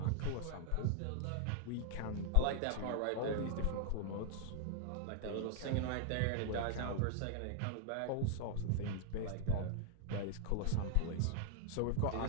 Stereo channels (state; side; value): different; both; correlation 0.00